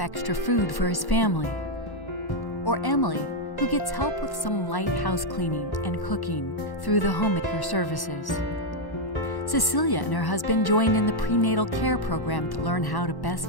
food for his family, or Emily, who gets help with some light house cleaning and cooking through the homemaker services. Cecilia and her husband joined in the prenatal care program to learn how to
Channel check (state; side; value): late; right; 1.1 ms